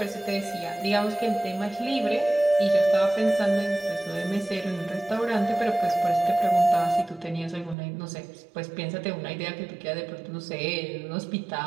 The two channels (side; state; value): left; drops out; at 7.8 s